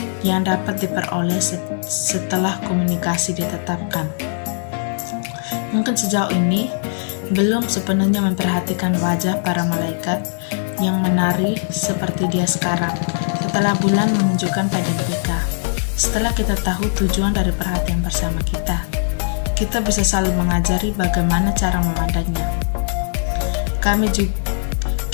yang dapat diperoleh setelah komunikasi ditetapkan. Mungkin sejauh ini belum sepenuhnya memperhatikan wajah para malaikat yang menari seperti dia sekarang setelah bulan menunjukkan pada mereka. Setelah kita tahu tujuan dari perhatian bersama kita bisa saling mengajari bagaimana cara memandangnya. Kami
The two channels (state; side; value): silent; right; digital silence